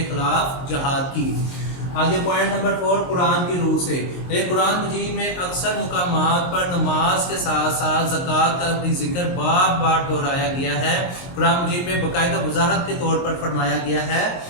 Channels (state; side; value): late; right; 22 ms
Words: खिलाफ जहाद की। आगे पॉइंट नंबर 4, कुरान की रूह से। कुरान मजीद में अक्सर मुकामात पर नमाज के साथ साथ ज़कात का भी जिक्र बार बार दोहराया गया है। कुरान मजीद में बाकायदा वजाहत के तौर पर फरमाया गया है।